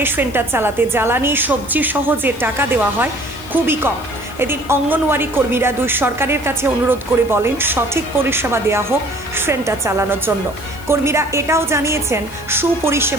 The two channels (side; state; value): left; noise; hiss, 20 dB below the sound